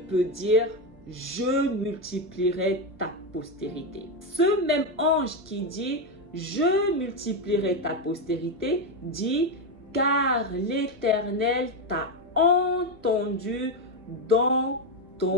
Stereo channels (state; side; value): normal; both; correlation 0.09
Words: peut dire: Je multiplierai ta postérité? Ce même ange qui dit: Je multiplierai ta postérité dit: Car l'Éternel t'a entendu dans